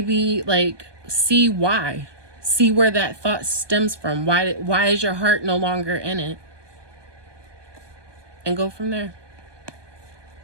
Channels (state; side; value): late; left; 1.2 ms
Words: like, see why. See where that thought stems from. Why is your heart no longer in it? And go from there.